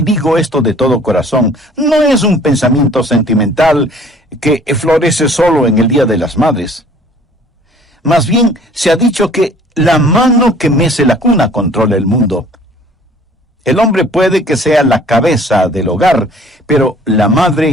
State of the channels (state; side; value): normal; both; correlation 0.53